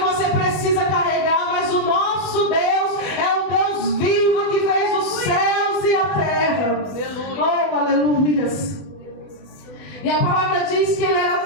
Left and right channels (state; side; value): late; right; 20 ms